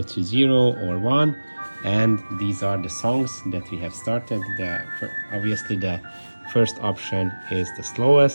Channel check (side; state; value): both; inverted; correlation -1.00